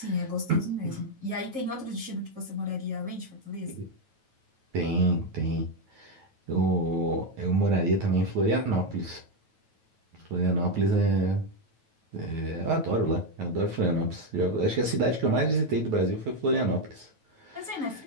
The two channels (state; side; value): late; left; 9.2 ms